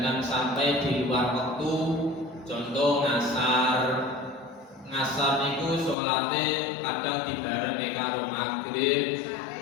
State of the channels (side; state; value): right; drops out; at 6.0 s